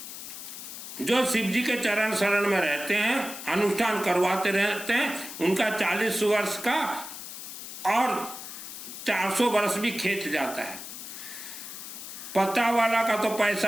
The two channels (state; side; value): noise; left; hiss, 10 dB below the sound